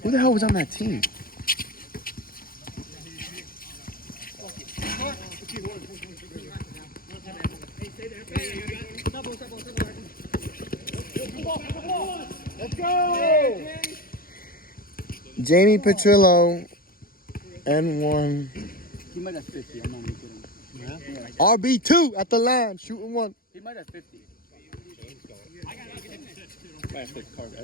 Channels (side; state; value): right; late; 0.42 ms